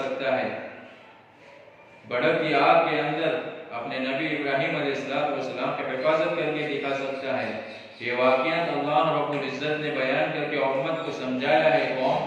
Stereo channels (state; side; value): identical; both; correlation 1.00